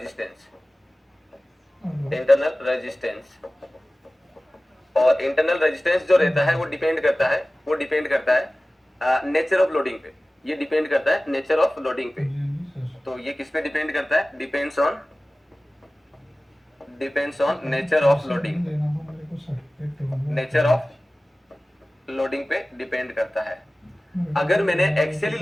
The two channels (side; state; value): both; normal; correlation 0.97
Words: इंटरनल रेजिस्टेंस। और इंटरनल रेजिस्टेंस जो रहता है वो डिपेंड करता है नेचर ऑफ लोडिंग पे। ये डिपेंड करता है नेचर ऑफ लोडिंग पे। तो ये किस पे डिपेंड करता है? Depends on nature of loading, nature of loading पे डिपेंड करता है। अगर मैंने एक्सियली